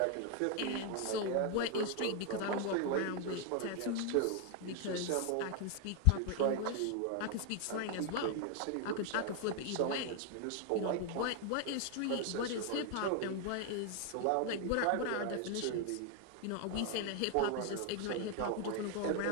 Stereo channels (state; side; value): different; both; correlation 0.00